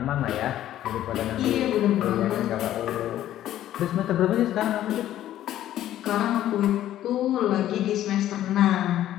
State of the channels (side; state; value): right; quieter; 12.6 dB